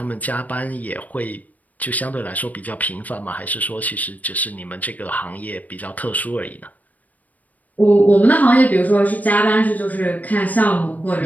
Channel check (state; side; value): late; right; 0.076 ms